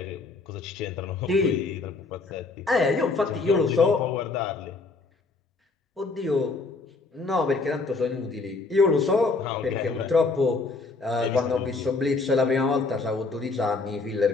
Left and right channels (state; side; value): quieter; right; 3.9 dB